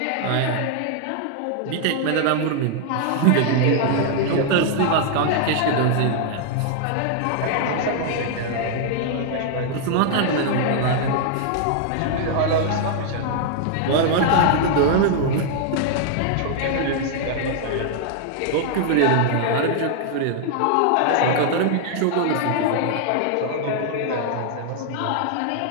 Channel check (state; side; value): different; both; correlation -0.01